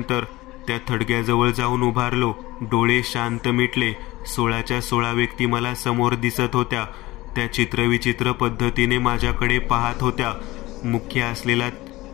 त्या थडग्याजवळ जाऊन उभारलो. डोळे शांत मिटले. 16च्या 16 व्यक्ती मला समोर दिसत होत्या. त्या चित्रविचित्र पद्धतीने माझ्याकडे पाहत होत्या. मुख्य असलेला,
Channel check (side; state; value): right; quieter; 19.0 dB